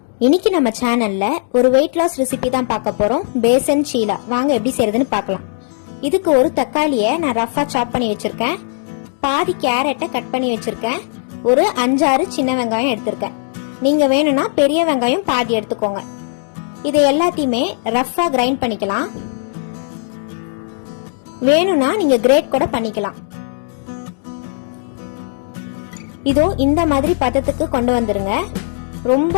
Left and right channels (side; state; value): right; silent; digital silence